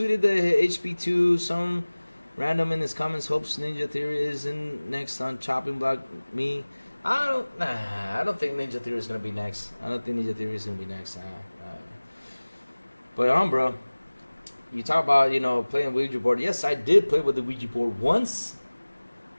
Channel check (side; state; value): both; inverted; correlation -1.00